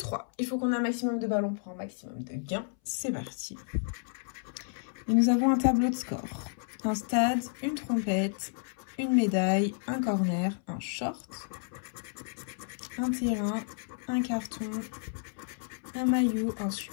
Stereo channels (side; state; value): right; silent; 57 dB below the other